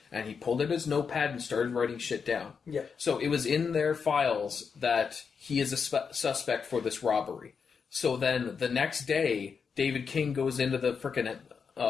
and he pulled out his notepad and started writing shit down. Yeah. So it was in their files that he is a suspect for this robbery. So then the next day, David King goes into the frickin'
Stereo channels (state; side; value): quieter; right; 6.0 dB